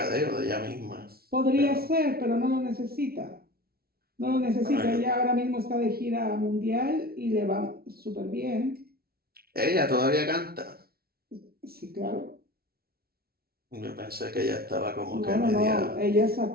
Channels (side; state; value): left; late; 0.44 ms